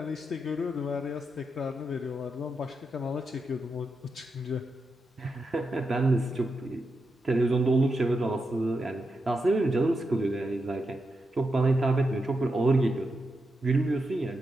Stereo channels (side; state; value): both; normal; correlation 0.86